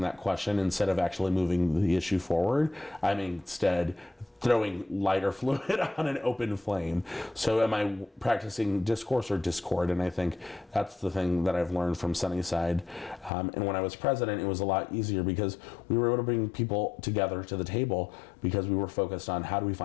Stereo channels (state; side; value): drops out; right; at 13.3 s